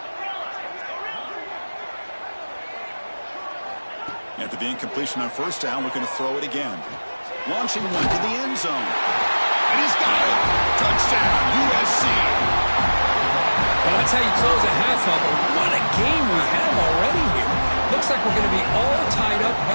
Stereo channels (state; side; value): inverted; both; correlation -1.00